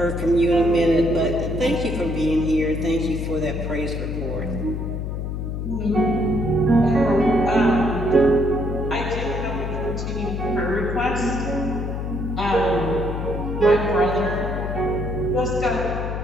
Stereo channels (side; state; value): left; noise; hum, 4 dB below the sound